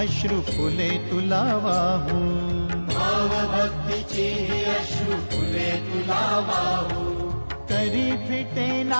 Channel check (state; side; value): inverted; both; correlation -1.00